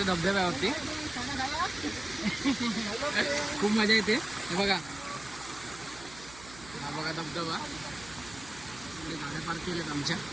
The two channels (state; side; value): noise; right; hum, 18 dB below the sound